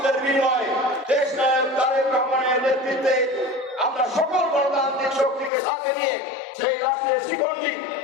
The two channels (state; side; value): drops out; right; at 5.5 s